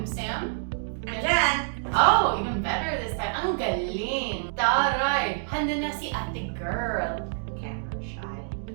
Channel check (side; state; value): left; silent; digital silence